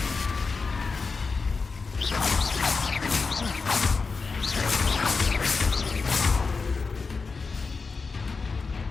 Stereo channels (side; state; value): right; quieter; 4.5 dB